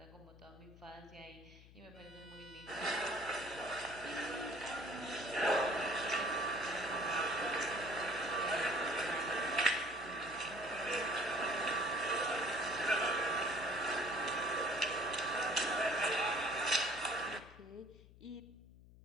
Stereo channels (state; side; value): noise; left; hum, 21 dB below the sound